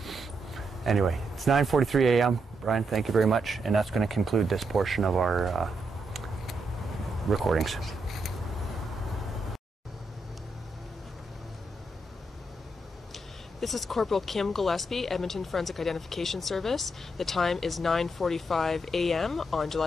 Anyway, it's 9:43 a.m. Brian, thank you very much. And that's going to conclude this portion of our recordings. This is Corporal Kim Gillespie, Edmonton Forensic Identification Service. The time is 9:45 a.m. on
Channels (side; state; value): both; normal; correlation 0.81